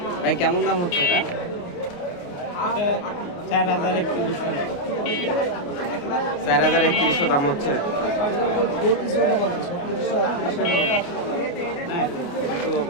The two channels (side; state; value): right; late; 28 ms